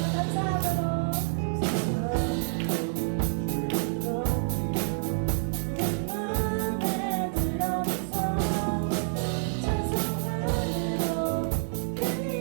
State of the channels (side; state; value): left; silent; digital silence